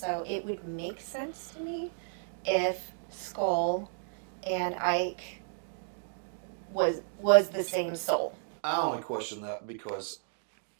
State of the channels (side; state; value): left; silent; digital silence